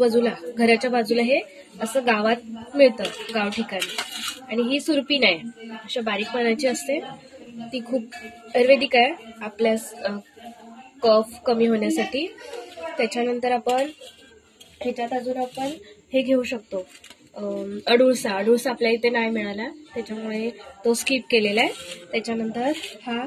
घराच्या बाजूला हे असं गावात मिळतं, गाव ठिकाणी. आणि ही सुरपीन आहे, अशा बारीक पानाची असते. ती खूप आयुर्वेदिक आहे आपल्या कफ कमी होण्यासाठी. त्याच्यानंतर आपण ह्याच्यात अजून आपण हे घेऊ शकतो, अडुळसा. आपल्या इथे नाही मिळाला, त्याच्यामुळे तो स्किप केलेला आहे. त्याच्यानंतर हा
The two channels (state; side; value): identical; both; correlation 1.00